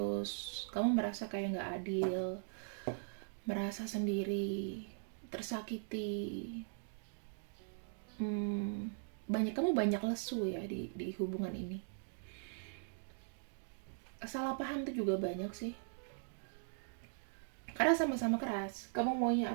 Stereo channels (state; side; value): silent; left; digital silence